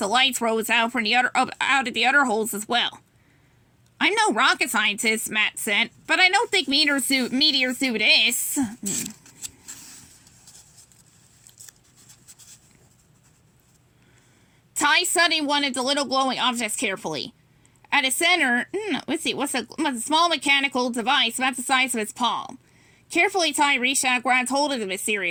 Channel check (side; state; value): both; identical; correlation 1.00